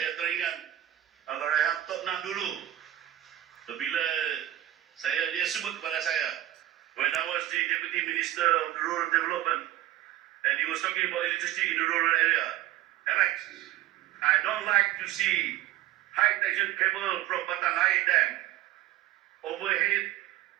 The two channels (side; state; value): left; quieter; 13.9 dB